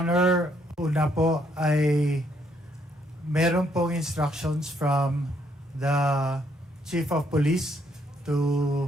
una po ay meron pong instructions from the Chief of Police to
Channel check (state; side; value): normal; both; correlation 0.71